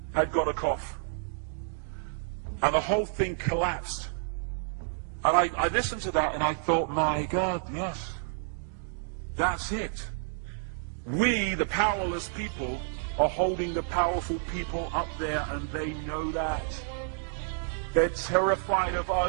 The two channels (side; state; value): left; silent; digital silence